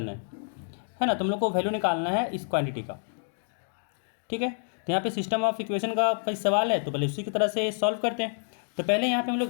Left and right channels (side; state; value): right; silent; digital silence